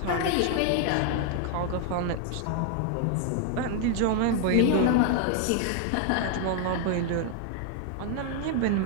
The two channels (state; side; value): different; both; correlation 0.00